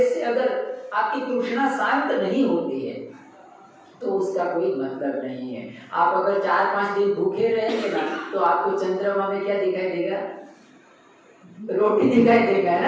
से अगर आपकी तृष्णा शांत नहीं होती है तो उसका कोई मतलब नहीं है। आप अगर 4-5 दिन भूखे रहेंगे ना, तो आपको चंद्रमा में क्या दिखाई देगा? रोटी दिखाई देगा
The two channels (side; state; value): both; identical; correlation 1.00